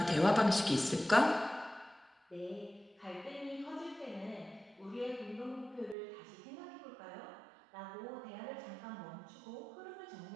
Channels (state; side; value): drops out; left; at 6.0 s